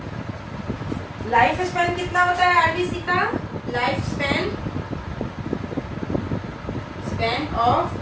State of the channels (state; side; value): identical; both; correlation 1.00